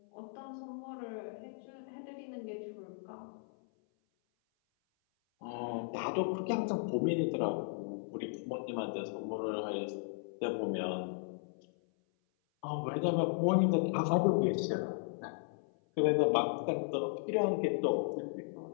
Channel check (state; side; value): silent; right; 54 dB below the other